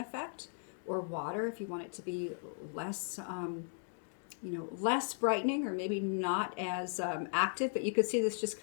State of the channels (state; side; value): silent; right; digital silence